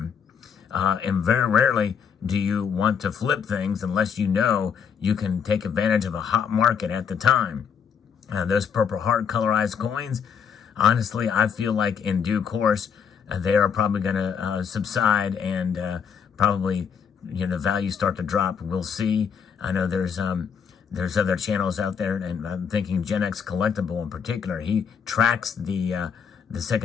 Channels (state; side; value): quieter; right; 7.1 dB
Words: And very rarely do you want to flip things unless you know you can take advantage of a hot market at the time. Those Purple Heart colorized coins, honestly, I feel like in due course, they are probably going to subside, and probably, you know, the value start to drop. We'll see. I know there's other channels out there, and I'm thinking Gen X Collectible in particular. He tracks the